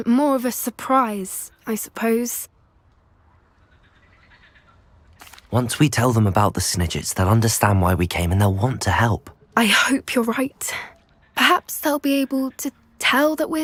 more of a surprise, I suppose. Once we tell them about the Snidgets, they'll understand why we came and they'll want to help. I hope you're right. Perhaps they'll be able to tell that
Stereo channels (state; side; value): identical; both; correlation 1.00